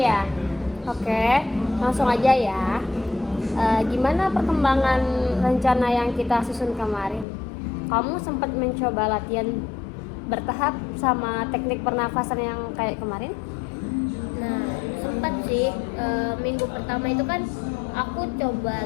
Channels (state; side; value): drops out; right; at 7.2 s